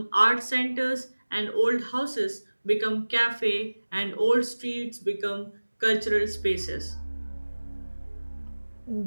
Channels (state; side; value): inverted; both; correlation -1.00